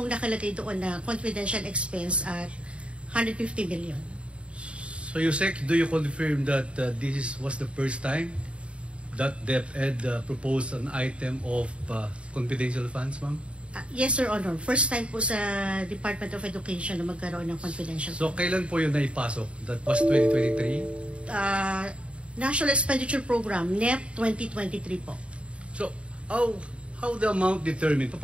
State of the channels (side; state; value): left; late; 0.059 ms